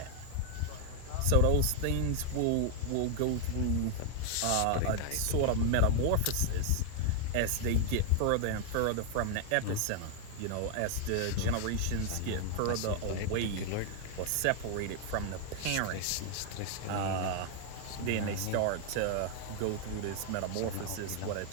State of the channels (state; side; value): different; both; correlation 0.00